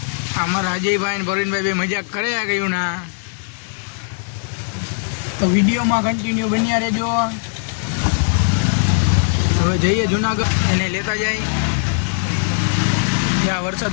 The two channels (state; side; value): silent; right; 66 dB below the other